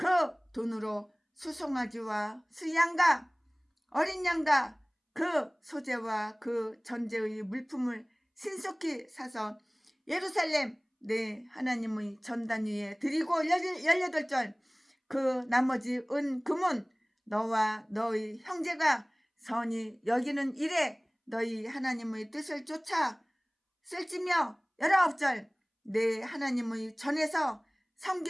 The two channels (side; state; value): both; identical; correlation 1.00